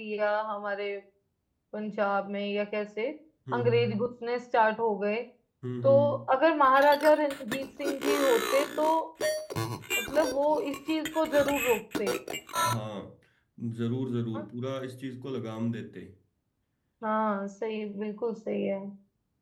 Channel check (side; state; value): both; identical; correlation 1.00